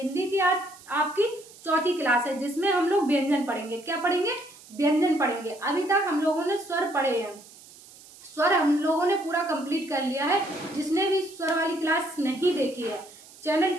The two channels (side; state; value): right; noise; hiss, 21 dB below the sound